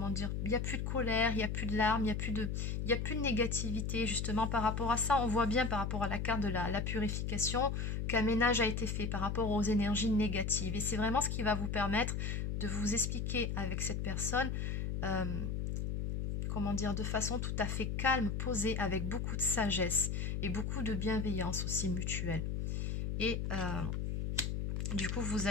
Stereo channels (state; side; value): noise; left; hum, 1 dB below the sound